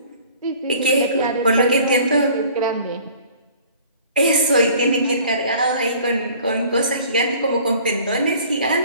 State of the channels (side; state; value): both; inverted; correlation -0.50